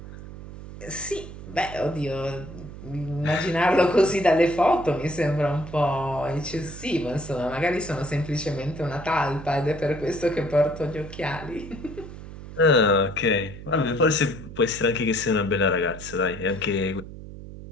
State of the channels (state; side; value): noise; right; hum, 13 dB below the sound